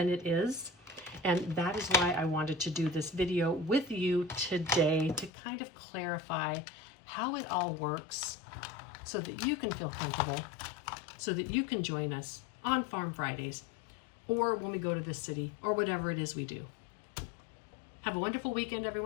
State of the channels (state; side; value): drops out; right; at 5.3 s